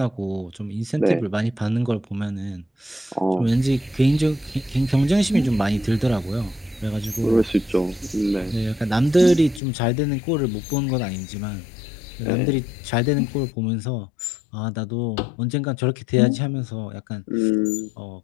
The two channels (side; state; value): right; drops out; at 9.6 s